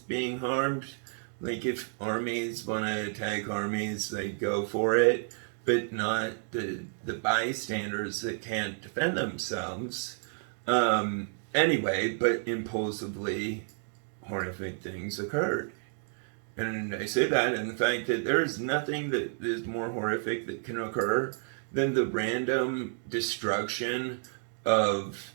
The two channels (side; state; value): left; silent; digital silence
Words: harmed. Like, if armies want to attack armies, they go for it, but not the bystanders that can't defend themselves. Anyway, but impulsively, horrific things occurred. And I say that in the fact that there is nothing that is more horrific that can occur than the random destruction of